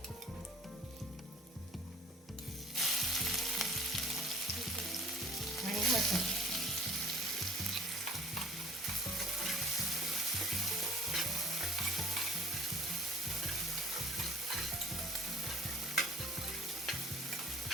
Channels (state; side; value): normal; both; correlation 0.50